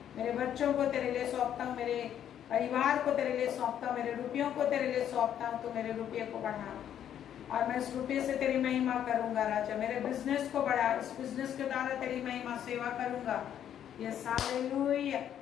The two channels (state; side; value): quieter; right; 10.0 dB